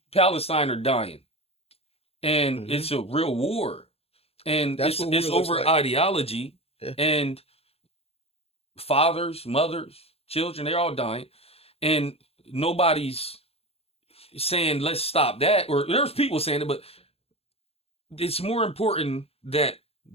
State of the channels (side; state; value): right; late; 0.29 ms